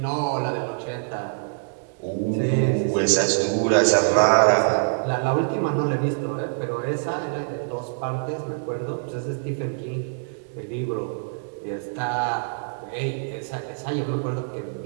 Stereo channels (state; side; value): silent; left; 61 dB below the other